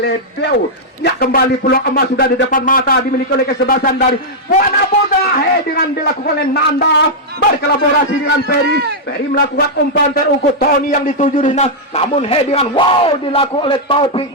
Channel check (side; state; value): both; normal; correlation -0.06